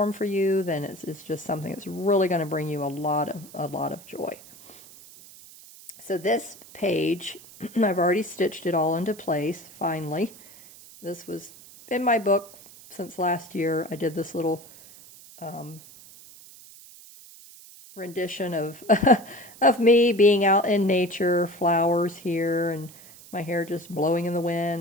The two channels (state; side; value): noise; right; hiss, 20 dB below the sound